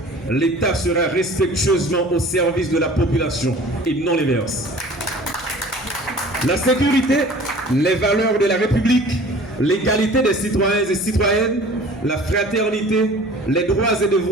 L'État sera respectueusement au service de la population et non l'inverse. La sécurité, les valeurs de la République, l'égalité des citoyens et citoyennes, la fraternité, les droits et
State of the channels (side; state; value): both; normal; correlation 0.46